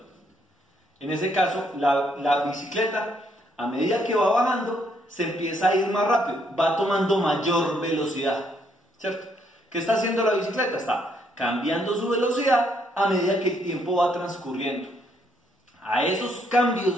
en ese caso la bicicleta, a medida que va bajando, se empieza a ir más rápido, va tomando mayor velocidad, ¿cierto? ¿Qué está haciendo la bicicleta? Está cambiando su velocidad a medida que el tiempo va transcurriendo. A esos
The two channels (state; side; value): normal; both; correlation 0.72